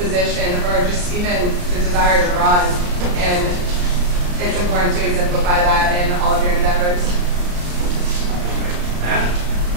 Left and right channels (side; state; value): left; late; 34 ms